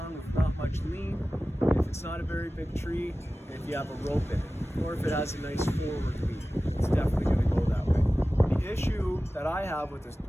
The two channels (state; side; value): normal; both; correlation 0.96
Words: with not much lean, if it's not a very big tree, and if you have a rope in it, or if it has a nice forward lean. It's definitely going to go that way. The issue that I have with